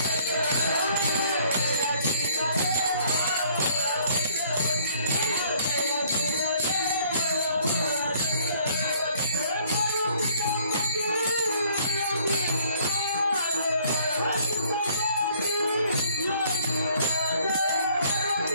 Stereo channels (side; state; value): both; inverted; correlation -0.59